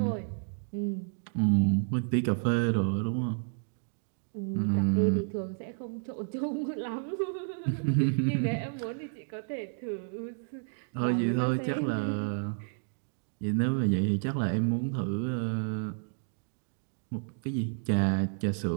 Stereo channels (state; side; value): silent; left; digital silence